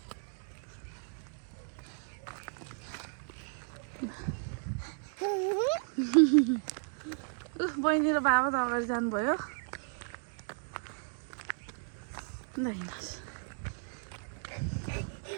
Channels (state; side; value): silent; left; 55 dB below the other